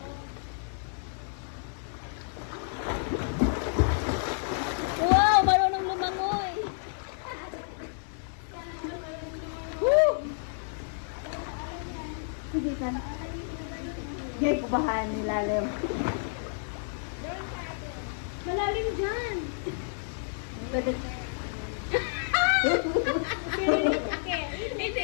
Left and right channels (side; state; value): right; silent; 58 dB below the other